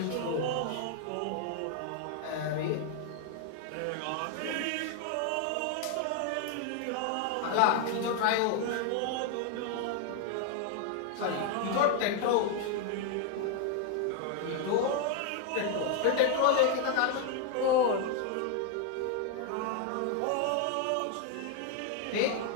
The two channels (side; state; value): both; different; correlation 0.00